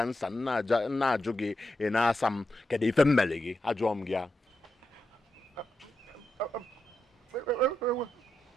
nna ajụ gị ị na-asa m kedu ife mmele gị ajụọ m gị ya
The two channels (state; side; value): normal; both; correlation 0.86